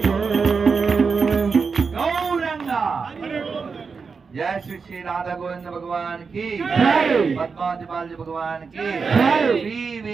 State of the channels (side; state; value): left; quieter; 5.2 dB